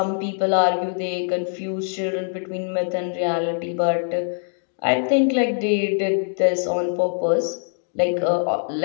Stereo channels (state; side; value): silent; right; digital silence